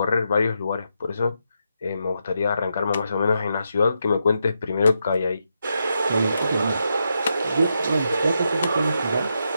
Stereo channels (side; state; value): both; inverted; correlation -0.83